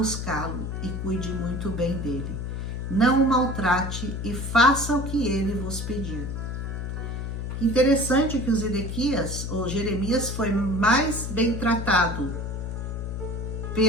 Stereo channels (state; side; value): noise; left; hum, 4 dB below the sound